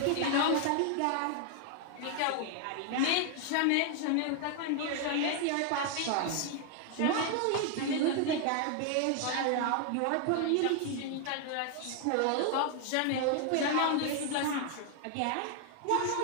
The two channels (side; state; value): both; different; correlation 0.00